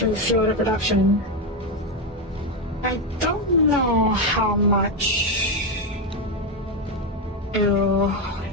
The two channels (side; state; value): both; normal; correlation 0.08